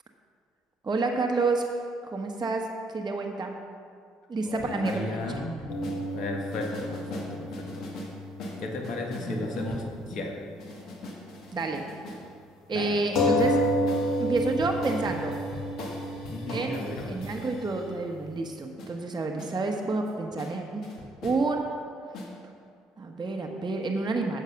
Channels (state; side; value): normal; both; correlation 0.65